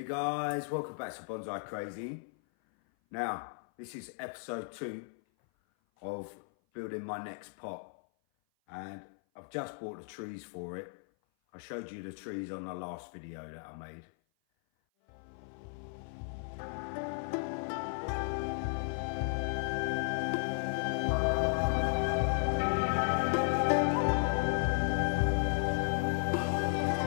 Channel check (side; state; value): right; silent; 55 dB below the other